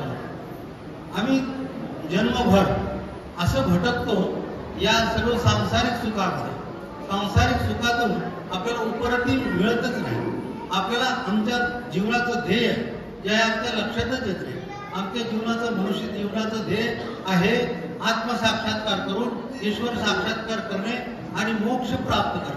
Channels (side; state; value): both; identical; correlation 1.00